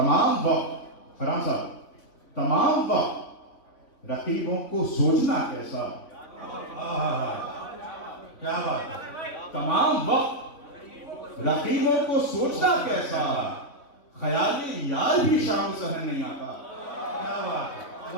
وقت، فرحان صاحب، تمام وقت رقیبوں کو سوچنا کیسا. کیا بات ہے، تمام وقت رقیبوں کو سوچنا کیسا، خیالی یار بھی شام سحر نہیں آتا. کیا بات ہے،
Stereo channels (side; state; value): right; late; 3.5 ms